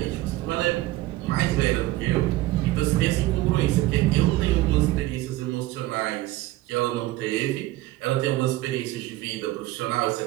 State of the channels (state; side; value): quieter; left; 17.3 dB